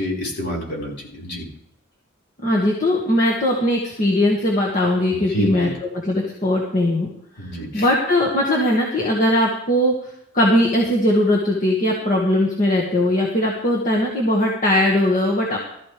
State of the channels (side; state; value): both; normal; correlation 0.52